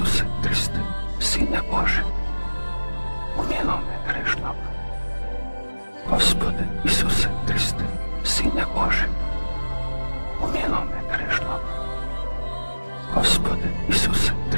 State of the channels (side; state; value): both; inverted; correlation -1.00